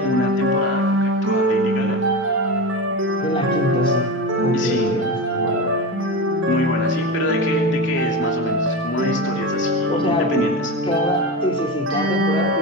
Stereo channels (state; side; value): normal; both; correlation 0.23